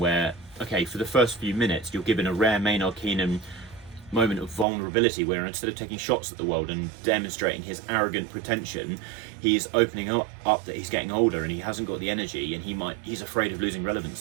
okay, for the first few minutes, you're given a rare Maynard Keenan moment of vulnerability where instead of taking shots at the world and demonstrating his arrogant pretension, he's opening up that he's getting older and he hasn't got the energy and he's afraid of losing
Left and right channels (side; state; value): left; drops out; at 4.7 s